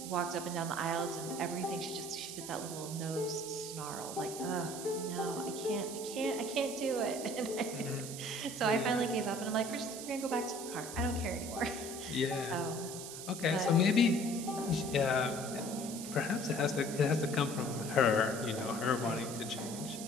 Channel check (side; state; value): right; noise; hiss, 9 dB below the sound